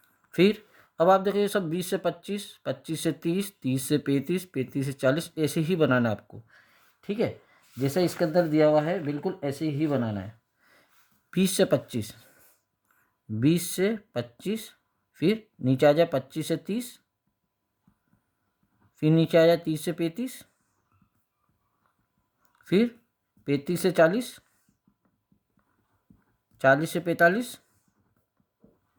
फिर अब आप देखिए सब 20 से 25, 25 से 30, 30 से 35, 35 से 40, ऐसे ही बनाना है आपको। ठीक है, जैसे इसके अंदर दिया हुआ है बिल्कुल ऐसे ही बनाना है। 20 से 25, 20 से 25, फिर नीचे आ जाए 25 से 30, फिर नीचे आ जाए 30 से 35, फिर 35 से 40, 40 से 45,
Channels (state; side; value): identical; both; correlation 1.00